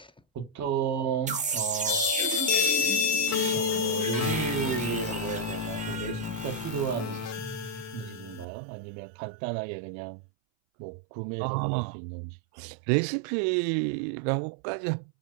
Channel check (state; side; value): drops out; left; at 8.5 s